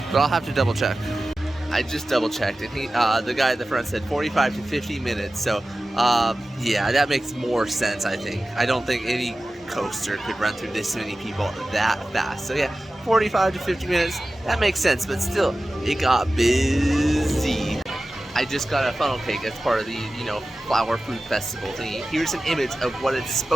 But I'll have to double check. I just double checked, and the guy at the front said 45 to 50 minutes. So, yeah, that makes more sense, I think. I don't think any coaster could run through this many people that fast. So, yeah, 45 to 50 minutes, that makes sense. But still, it got busy. I just got a funnel cake as part of the, flower food festival thingy. Here's an image of what it's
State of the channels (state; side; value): normal; both; correlation 0.95